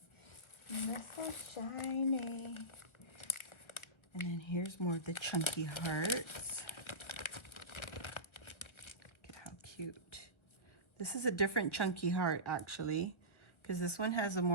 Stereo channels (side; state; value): right; late; 1.4 ms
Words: That's so shiny. And then here's more of the chunky hearts. Look at how cute. This is a different chunky heart, actually, because this one has a